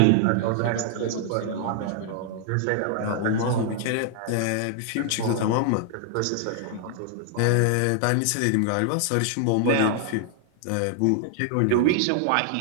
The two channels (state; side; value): different; both; correlation -0.01